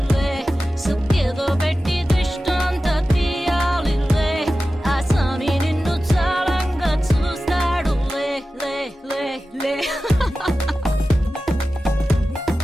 సుఖేదో పెట్టి దిష్టంత తీయాలిలే ఆ స్వామి నిన్ను చాలంగా చూస్తాడు లే లే లే లే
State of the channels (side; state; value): both; normal; correlation 0.94